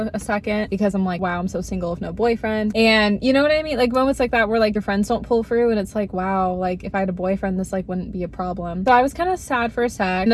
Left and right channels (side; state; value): both; identical; correlation 1.00